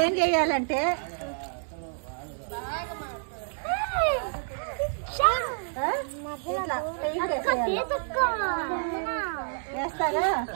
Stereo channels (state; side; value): silent; left; 59 dB below the other